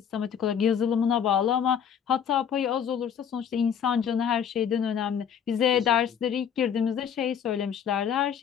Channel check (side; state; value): right; quieter; 8.1 dB